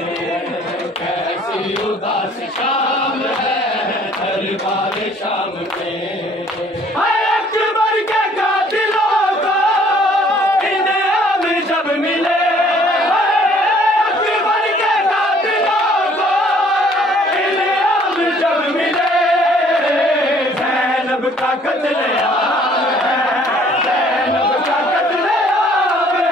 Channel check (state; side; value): normal; both; correlation 0.59